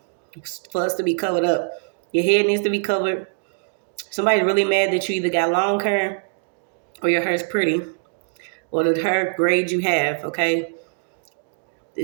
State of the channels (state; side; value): silent; left; 64 dB below the other